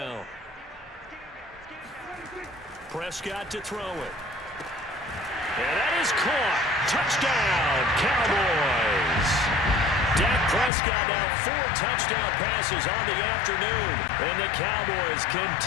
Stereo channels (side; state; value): right; drops out; at 10.7 s